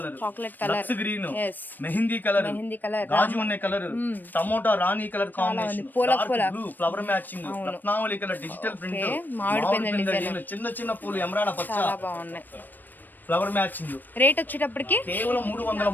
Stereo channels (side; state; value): right; late; 0.090 ms